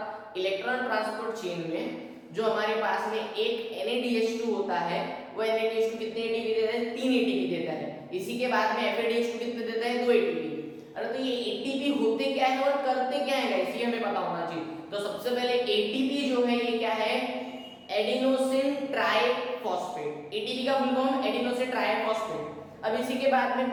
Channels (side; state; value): both; identical; correlation 1.00